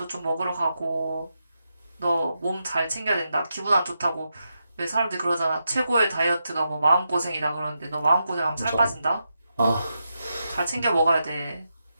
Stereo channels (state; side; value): inverted; both; correlation -0.86